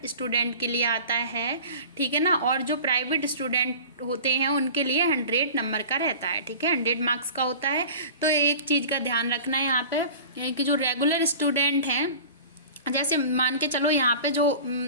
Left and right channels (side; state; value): both; inverted; correlation -0.39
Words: स्टूडेंट के लिए आता है। ठीक है ना, और जो प्राइवेट स्टूडेंट होते हैं उनके लिए 100 नंबर का रहता है। ठीक है, 100 मार्क्स का होता है। तो एक चीज़ का ध्यान रखना है यहाँ पे कि जो रेगुलर स्टूडेंट हैं, जैसे मान के चलो यहाँ पे जो